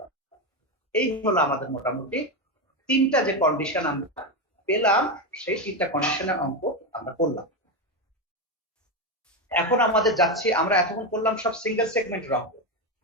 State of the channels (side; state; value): both; normal; correlation 0.11